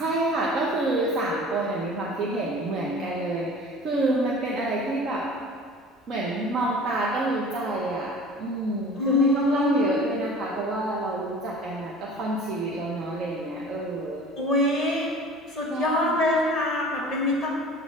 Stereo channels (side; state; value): both; normal; correlation 0.43